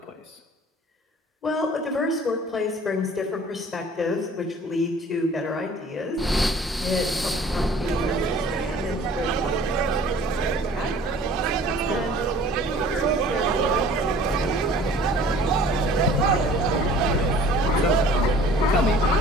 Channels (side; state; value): both; normal; correlation 0.49